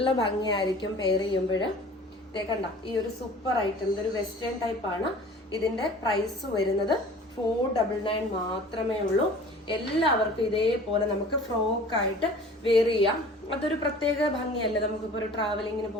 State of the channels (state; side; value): normal; both; correlation 0.45